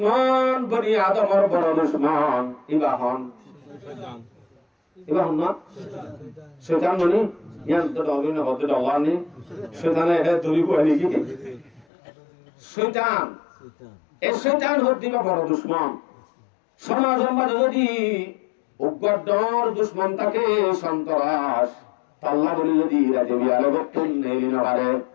বনি আদমর বড় দুশমন ইবাহন না শয়তান ননি ইয়ান তো অবিন হতে দলানি শয়তানে এটা দড়ি কইলি কি শয়তান এই শয়তান হতে বড় দুশমন সমাজের মাঝে যদি উগ্রডর দুশমন থাকে সন্ত্রাস আল্লাহ বলি যদি রাজে বিয়ালে বক্তন নেই নবারে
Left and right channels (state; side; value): drops out; right; at 11.9 s